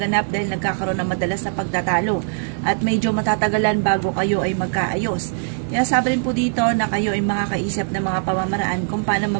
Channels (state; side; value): silent; left; digital silence